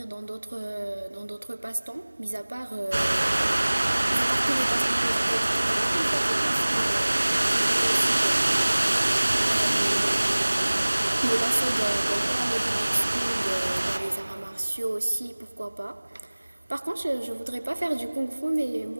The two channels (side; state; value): both; inverted; correlation -1.00